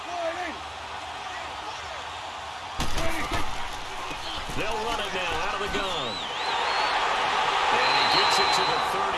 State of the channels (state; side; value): identical; both; correlation 1.00